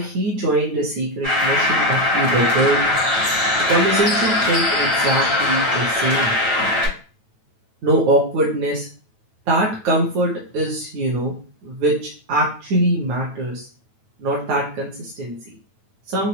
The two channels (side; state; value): left; late; 9.2 ms